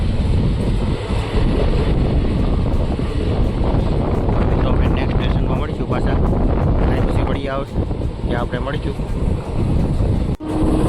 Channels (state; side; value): identical; both; correlation 1.00